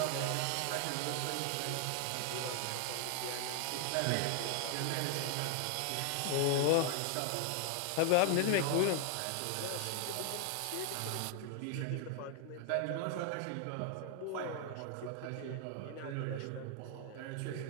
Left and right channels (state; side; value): different; both; correlation 0.00